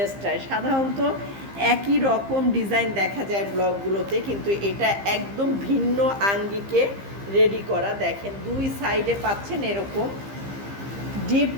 সাধারণত একই রকম ডিজাইন দেখা যায় ব্লকগুলোতে, কিন্তু এটা একদম ভিন্ন আঙ্গিকে রেডি করা। দেখেন দুই সাইডে পাচ্ছেন এরকম ডিপ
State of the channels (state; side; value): late; left; 15 ms